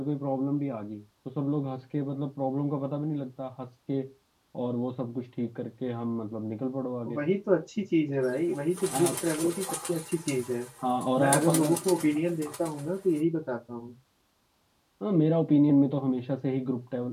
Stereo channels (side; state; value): both; identical; correlation 1.00